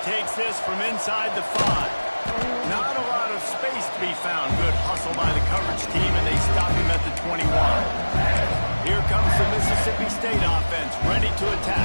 takes this from inside the 5. Not a lot of space to be found. Good hustle by the coverage team, and they stop him at the 21. Here comes the Mississippi State offense, ready to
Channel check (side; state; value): both; inverted; correlation -1.00